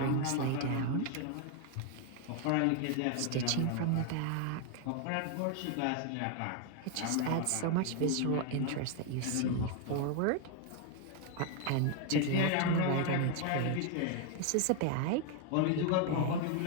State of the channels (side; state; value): both; different; correlation 0.01